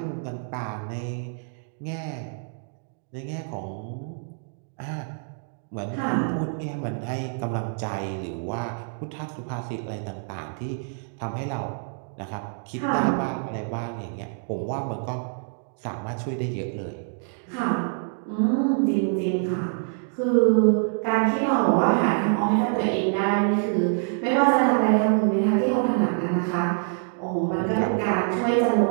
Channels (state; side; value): silent; left; 61 dB below the other